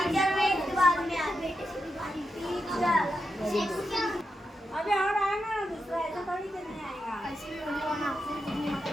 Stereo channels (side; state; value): both; normal; correlation 0.87